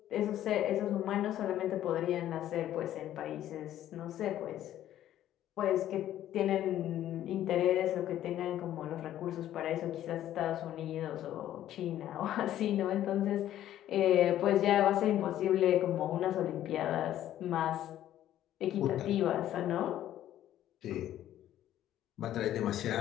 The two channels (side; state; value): right; quieter; 12.3 dB